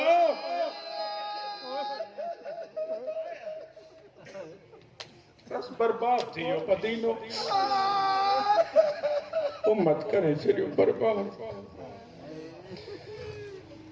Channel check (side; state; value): both; identical; correlation 1.00